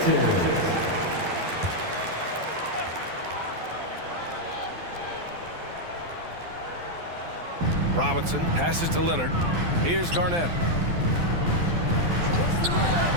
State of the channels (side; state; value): left; late; 12 ms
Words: Robinson passes to Leonard. Here's Garnett.